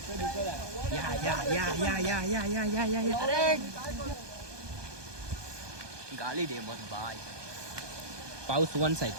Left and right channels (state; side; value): late; left; 1.2 ms